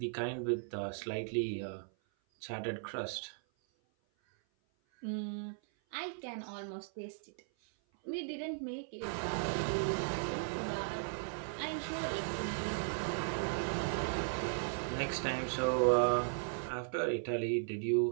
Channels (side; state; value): left; silent; 53 dB below the other